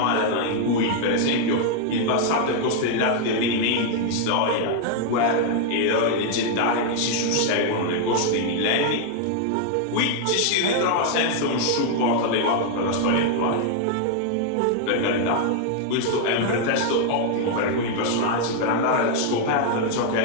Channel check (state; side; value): different; both; correlation 0.00